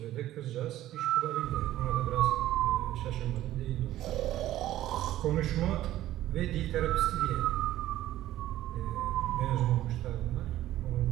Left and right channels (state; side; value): quieter; left; 14.0 dB